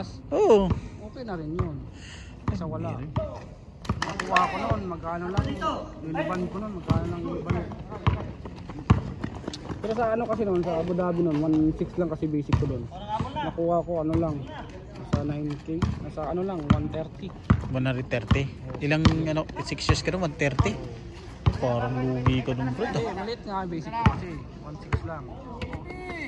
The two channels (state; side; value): identical; both; correlation 1.00